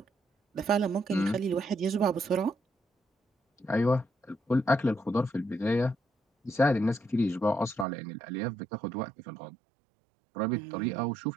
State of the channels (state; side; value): drops out; left; at 7.9 s